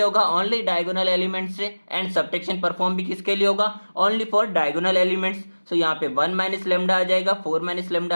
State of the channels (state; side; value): inverted; both; correlation -1.00